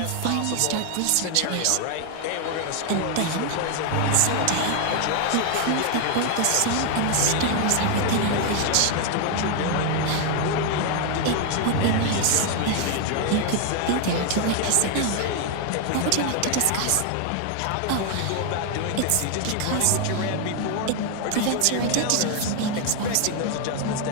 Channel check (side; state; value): both; different; correlation 0.00